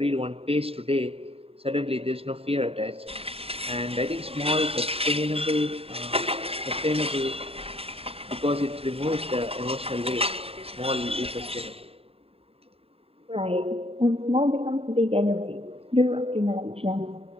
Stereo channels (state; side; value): late; left; 0.28 ms